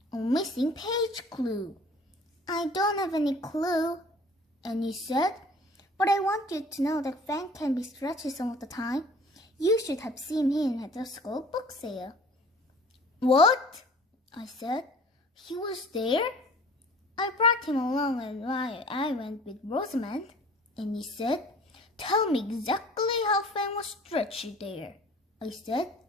A missing page clue. I don't have any clue, Annie said. But I want you to know that Fang can be stretchy some of the time. You should have seen him at the school book sale. What? I said. He was there? I brought him along and I went with Rosamond. And he said, Tell me exactly how Fang was stretchy there. I said.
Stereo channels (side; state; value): both; normal; correlation 0.48